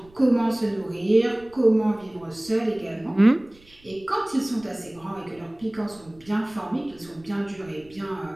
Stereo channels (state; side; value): noise; right; rumble, 26 dB below the sound